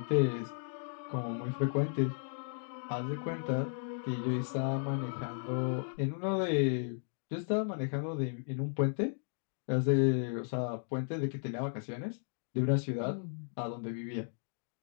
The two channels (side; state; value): right; silent; digital silence